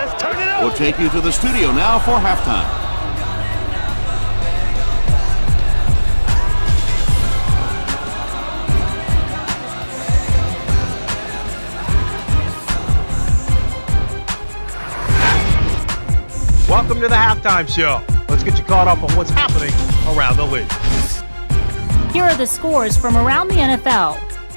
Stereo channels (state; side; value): inverted; both; correlation -1.00